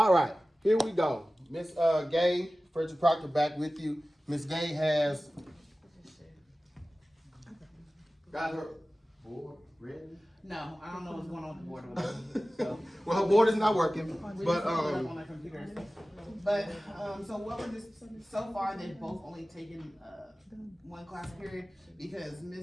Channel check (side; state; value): both; normal; correlation 0.97